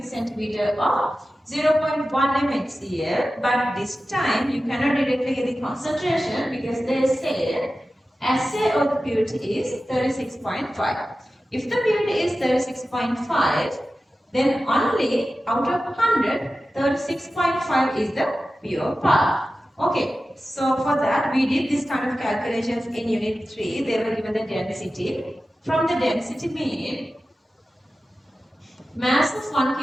centimeter of 0.1 mHCl, but this time you cannot directly get the concentration, because they say assay of the purity is 36.5. If the purity is 36.5, then only out of 100, 36.5 is the pure part. Okay, so for that we did this kind of calculations in unit 3. They were given the density. From the density mean, mass of 1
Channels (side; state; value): both; normal; correlation 0.94